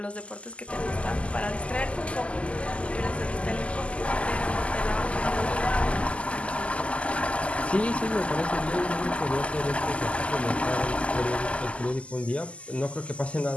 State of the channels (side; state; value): right; late; 0.059 ms